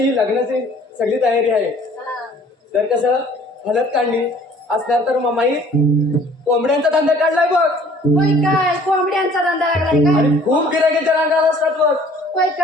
ही लग्नाची सगळी तयारी आहे. तर कसं हलत काढली असणार तर मामाई कोंबड्यांचा धंदा काढलाय बघ. होय काय? कोंबड्यांचा धंदा लागलाय का? आणि खूप गिरायकांच्या रांगा असतात बघ. होय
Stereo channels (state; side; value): normal; both; correlation 0.54